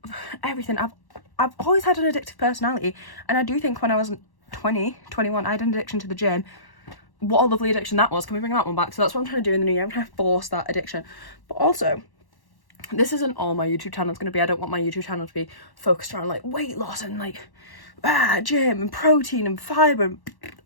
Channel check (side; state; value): right; late; 1.1 ms